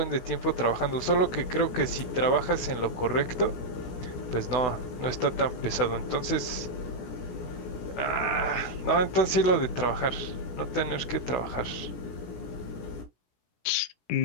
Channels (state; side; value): late; right; 16 ms